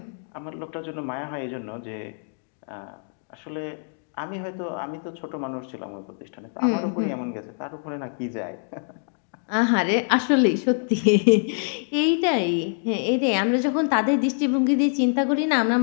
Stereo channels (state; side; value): silent; right; 62 dB below the other